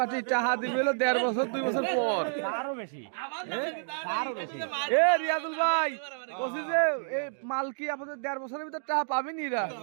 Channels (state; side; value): silent; left; digital silence